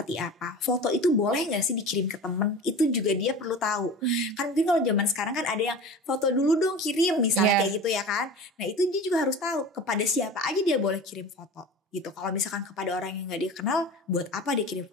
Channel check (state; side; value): normal; both; correlation 0.35